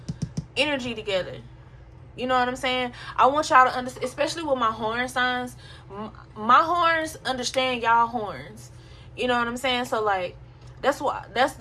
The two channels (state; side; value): identical; both; correlation 1.00